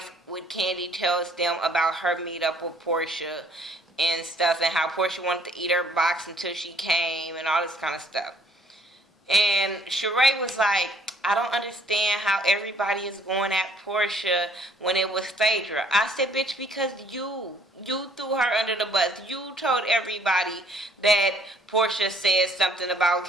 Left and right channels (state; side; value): normal; both; correlation 0.61